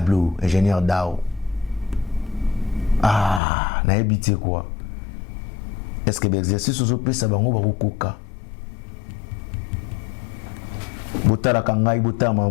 ingénieur Dao. Na habité quoi? Est-ce que l'exercice aux opés ça va koka? Botala kangai botala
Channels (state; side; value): drops out; right; at 3.4 s